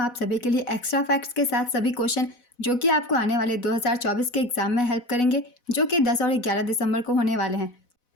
आप सभी के लिए एक्स्ट्रा फैक्ट्स के साथ सभी क्वेश्चन जो कि आपको आने वाले 2024 के एग्जाम में हेल्प करेंगे, जो कि 10 और 11 दिसंबर को होने वाले हैं।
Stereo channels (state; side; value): late; right; 4.1 ms